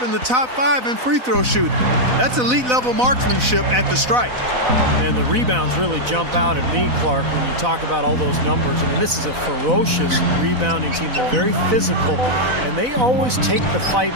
in the top 5 in free throw shooting. That's elite level marksmanship at the stripe. And the rebounds really jump out at me, Clark, when you talk about all those numbers. I mean, this is a ferocious rebounding team. They're very physical, and they always take the fight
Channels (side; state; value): left; late; 4.0 ms